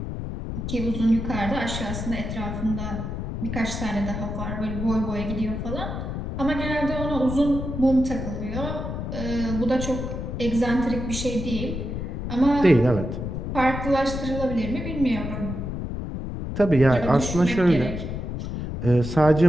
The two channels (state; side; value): noise; left; rumble, 5 dB below the sound